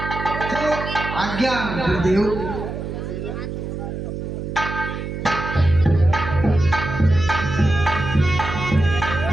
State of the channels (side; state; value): right; noise; hum, 6 dB below the sound